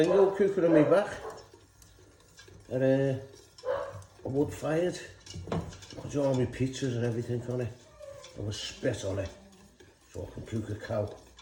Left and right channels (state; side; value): identical; both; correlation 1.00